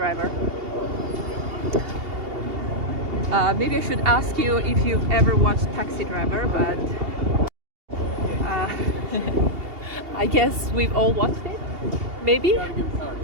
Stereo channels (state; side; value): late; left; 2.8 ms